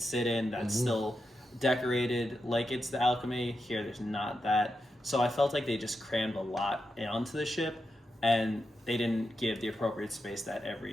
sit in that's still decorated like it's the Alchemy. Here, there's not that. So I felt like they just crammed a lot onto the ship, and they didn't give the appropriate space that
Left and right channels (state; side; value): normal; both; correlation 0.87